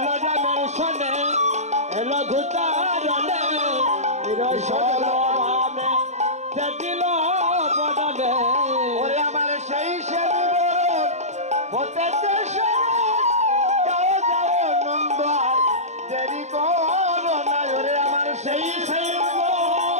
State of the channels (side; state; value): left; late; 0.33 ms